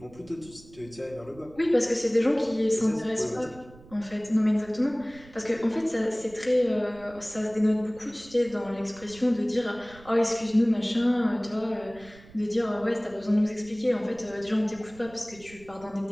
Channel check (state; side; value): noise; right; rumble, 22 dB below the sound